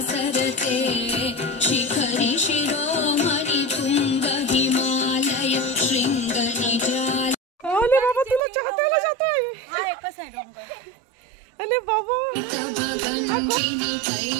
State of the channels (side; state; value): left; drops out; at 8.4 s